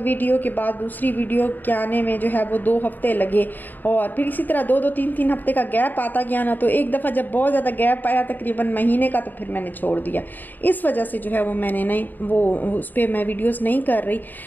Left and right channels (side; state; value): right; late; 0.088 ms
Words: वीडियो के बाद दूसरी वीडियो के आने में जो है वो 2 हफ्ते लगे, और फिर इसी तरह 2-2 3-3 हफ्ते का गैप आता गया ना, तो एक दफ़ा जब बहुत ज़्यादा गैप आया तकरीबन महीने का, तो फिर मैंने छोड़ दिया। इस वजह से जो है वो मैंने नहीं वो उस पर मैं वीडियोस नहीं कर रही,